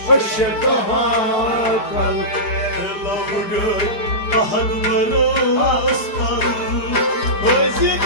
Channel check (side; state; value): right; late; 4.8 ms